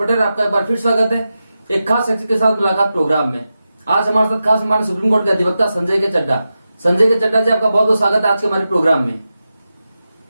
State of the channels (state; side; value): inverted; both; correlation -0.91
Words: आपका एक बार फिर स्वागत है एक खास शख्स के साथ मुलाकात प्रोग्राम में। आज हमारे साथ खास हमारे सुप्रीम कोर्ट के अधिवक्ता संजय के चड्ढा जी, आपका बहुत बहुत स्वागत है आज के हमारे प्रोग्राम में।